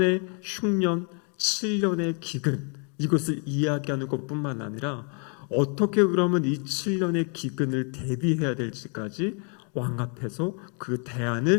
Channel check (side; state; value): right; quieter; 39.4 dB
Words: 흉년, 7년의 기근, 이것을 이야기하는 것뿐만 아니라 어떻게 그러면 이 7년의 기근을 대비해야 될지까지 왕 앞에서 그